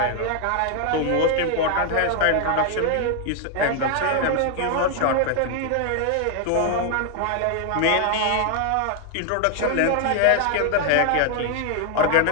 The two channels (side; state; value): both; different; correlation 0.00